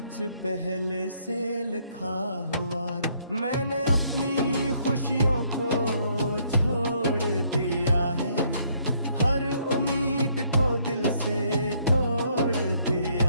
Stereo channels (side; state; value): both; inverted; correlation -0.67